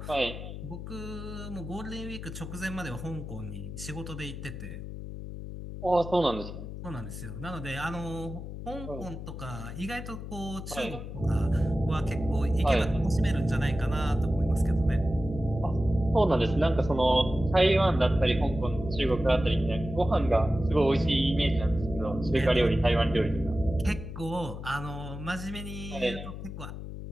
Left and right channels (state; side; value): noise; left; hum, 9 dB below the sound